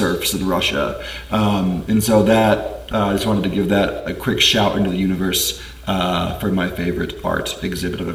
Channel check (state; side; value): identical; both; correlation 1.00